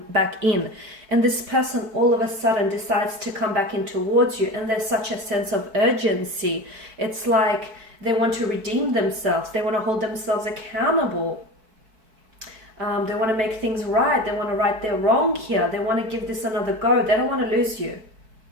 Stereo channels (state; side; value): late; left; 4.6 ms